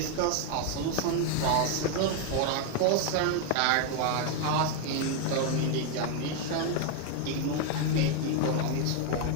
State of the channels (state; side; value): different; both; correlation 0.01